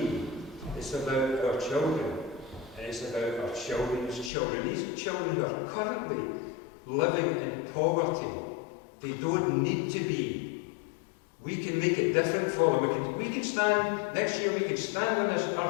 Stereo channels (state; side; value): drops out; right; at 4.3 s